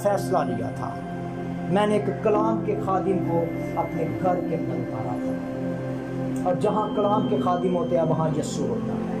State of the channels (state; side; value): identical; both; correlation 1.00